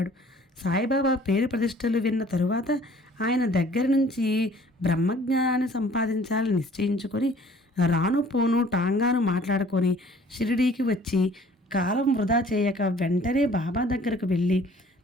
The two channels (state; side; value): normal; both; correlation 0.53